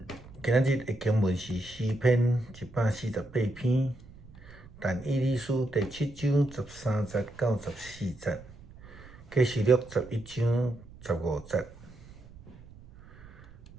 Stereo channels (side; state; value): right; noise; rumble, 20 dB below the sound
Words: 今仔日的经文是诗篇148篇，但以理书第7章13节到14节，启示录11章15节。